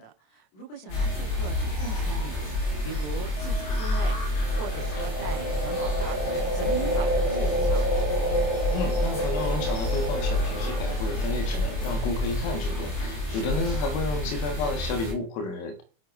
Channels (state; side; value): late; right; 27 ms